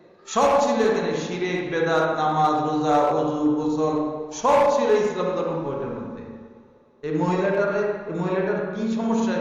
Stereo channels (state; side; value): identical; both; correlation 1.00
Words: সব ছিল এখানে। শিরক, বেদাত, নামাজ, রোজা, ওযু, গোসল সব ছিল ইসলাম ধর্ম বইটার মধ্যে। এই মহিলাটার কি সমস্যা?